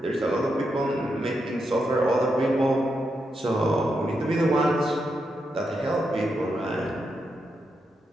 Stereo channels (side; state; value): both; normal; correlation 0.84